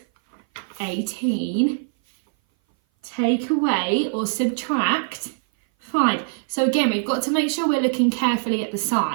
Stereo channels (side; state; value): left; silent; 58 dB below the other